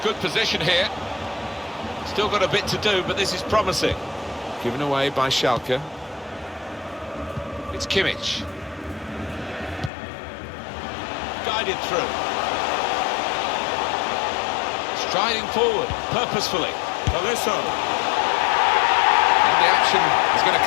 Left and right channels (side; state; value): right; drops out; at 9.9 s